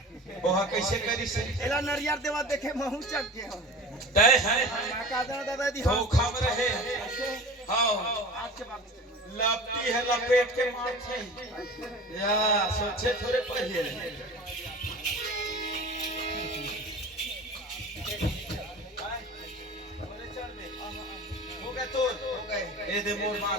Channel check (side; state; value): both; normal; correlation 0.37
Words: ओहा कैसे करी से एला नरियर देवा देखे महू चक के हम दे है का दादा दी धोखा में रहे हां आज के बाद लपटी है लपेट के माथे या सोचे थोड़े पढ़िए हो गए तो ए दे मोर